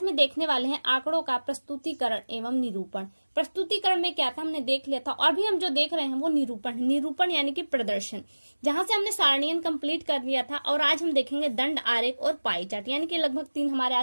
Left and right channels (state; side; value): inverted; both; correlation -1.00